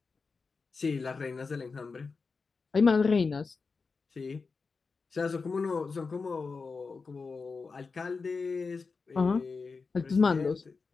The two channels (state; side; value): quieter; right; 4.6 dB